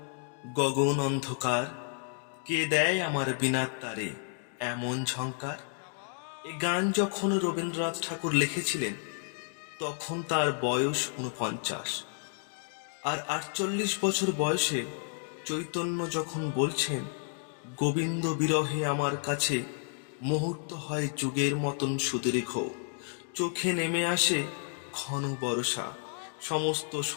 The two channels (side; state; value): right; silent; 56 dB below the other